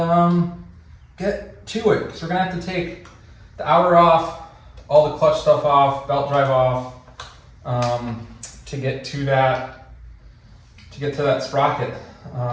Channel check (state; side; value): identical; both; correlation 1.00